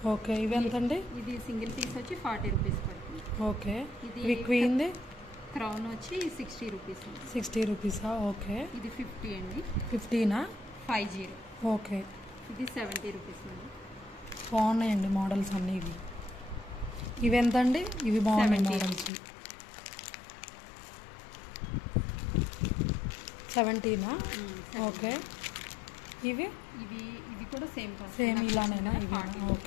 ఓకే. ఇవి ఎంత అండి? ఇది సింగిల్ పీస్ వచ్చి 40 రూపీస్ పడుతుంది. ఓకే. ఇది క్వీన్ది క్రౌన్ వచ్చి 60 రూపీస్. 60 రూపీసా? ఓకే. ఇది 50 అండి. 50నా? 50. ఓకే. ఇది 70 రూపీస్ అండి. బాగున్నాయండి మోడల్స్ అన్నీ. ఇవి ఎంత అండి? ఇవి బాగున్నాయి మోడల్స్. 70నా? ఓకే. ఇవి ఇవి కూడా సేమ్ ఇలానేనా? ఇవి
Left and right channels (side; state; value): right; drops out; at 19.1 s